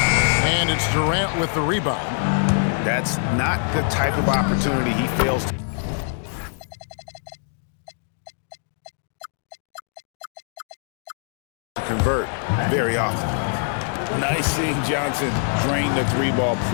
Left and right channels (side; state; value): right; silent; digital silence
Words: And it's Durant with the rebound. That's not the type of opportunity he fails to convert very often. Nice seeing Johnson drain the 3-ball,